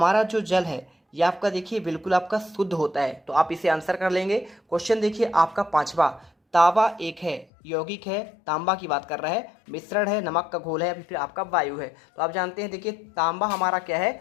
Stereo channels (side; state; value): right; drops out; at 7.5 s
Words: जो जल है ये आपका देखिए बिल्कुल आपका शुद्ध होता है। तो आप इसे आंसर कर लेंगे। क्वेश्चन देखिए आपका पांचवा, तांबा एक है, यौगिक है, तांबा की बात कर रहा है, मिश्रण है, नमक का घोल है या फिर आपका वायु है। तो आप जानते हैं देखिए तांबा हमारा क्या